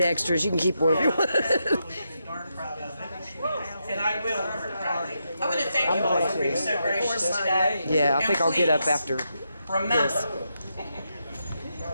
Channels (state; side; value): inverted; both; correlation -0.83